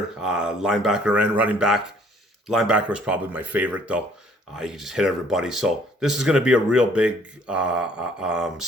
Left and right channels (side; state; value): both; normal; correlation 0.60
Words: linebacker and running back. Linebacker was probably my favorite, though. You can just hit everybody. So this is going to be a real big